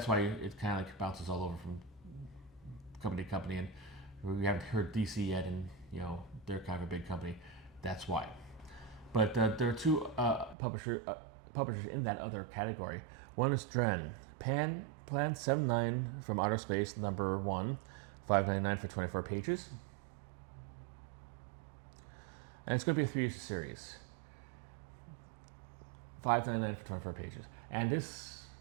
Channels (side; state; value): left; drops out; at 10.6 s